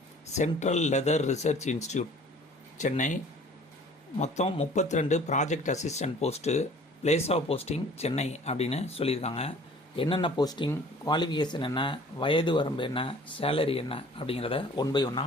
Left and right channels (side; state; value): both; normal; correlation 0.50